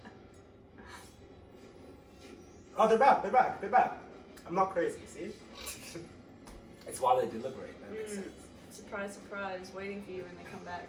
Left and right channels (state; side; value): identical; both; correlation 1.00